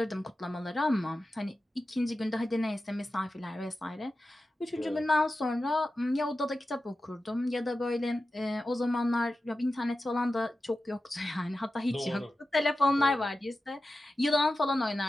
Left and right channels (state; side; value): normal; both; correlation 0.93